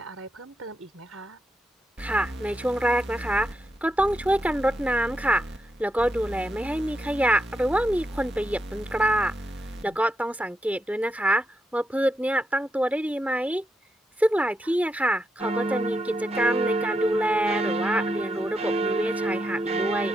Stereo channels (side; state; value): both; normal; correlation 0.83